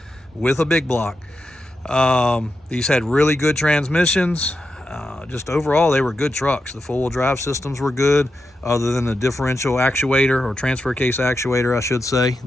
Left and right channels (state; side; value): normal; both; correlation 0.88